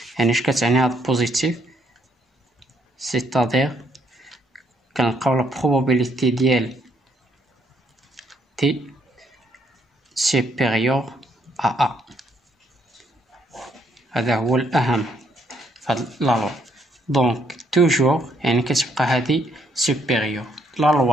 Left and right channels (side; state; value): both; normal; correlation 0.71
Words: يعني اش كتعني هاد بوزيتيف، سيتادير كنلقاو لا بروبابيليتي ديال تي سوبيريور ا هذا هو الاهم فهاد لا لوا. دونك توجور يعني كتبقى هادي سوبيريور. لا